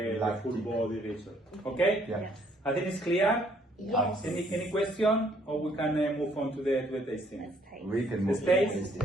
the lactic. full body result. Okay? Yeah. Yes. I think it's clear. Yes. Any question, or we can move on to the tasting? Let's taste. We can Let's move taste. to the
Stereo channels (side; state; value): both; normal; correlation 0.65